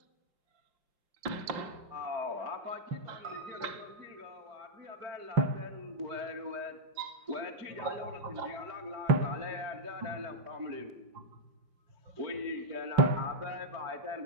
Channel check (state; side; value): late; left; 5.7 ms